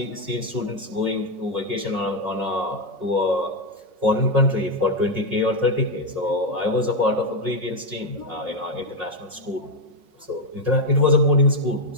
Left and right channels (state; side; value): late; left; 5.5 ms